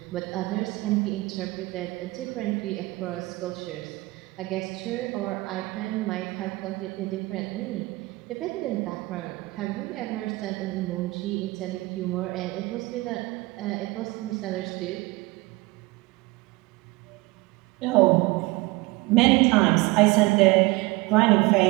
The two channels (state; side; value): quieter; left; 22.3 dB